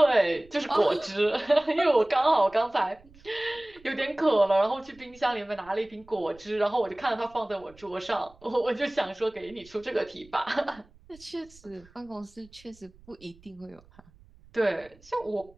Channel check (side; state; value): right; noise; rumble, 26 dB below the sound